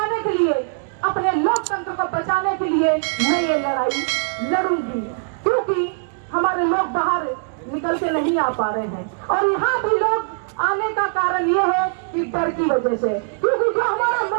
के लिए, अपने लोकतंत्र को बचाने के लिए मैं ये लड़ाई लड़ूंगी, क्योंकि हमारे लोग बाहर निकलते नहीं आ पा रहे हैं। और यहाँ भी लोग आने का कारण ये है कि डर की वजह से, क्योंकि जो हमारा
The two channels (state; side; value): silent; left; digital silence